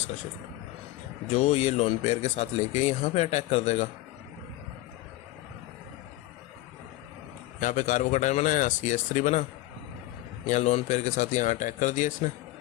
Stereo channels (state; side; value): quieter; right; 16.9 dB